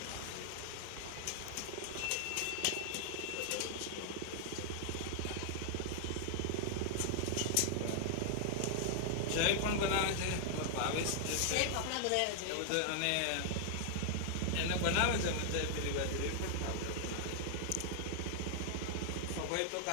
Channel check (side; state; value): both; different; correlation 0.00